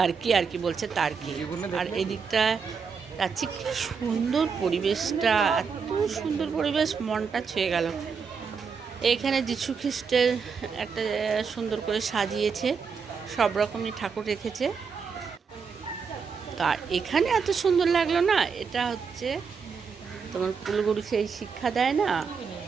আর কি বলছে টার্কি। আর এই দিকটা যাচ্ছি, কি সুন্দর পরিবেশটা, এত সুন্দর পরিবেশ, মনটা ছুঁয়ে গেল। এখানে যীশু খ্রিস্টের একটা সুন্দর করে সাজিয়েছে, সব রকমই ঠাকুর রেখেছে। আর এখানে এত সুন্দর লাগলো না, এটা হচ্ছে তোমার কুলগুরু সেই শিক্ষা দেয় না,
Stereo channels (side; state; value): left; quieter; 5.8 dB